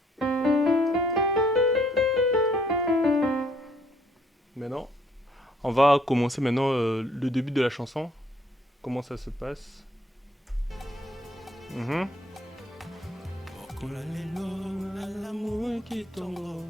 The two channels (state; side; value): normal; both; correlation 0.65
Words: Maintenant, on va commencer maintenant le début de la chanson. Comment ça se passe. Mhm.